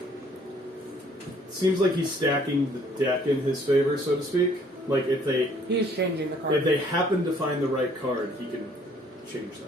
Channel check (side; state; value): both; normal; correlation 0.60